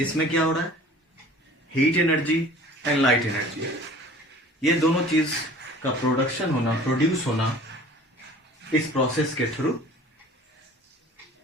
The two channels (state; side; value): normal; both; correlation 0.46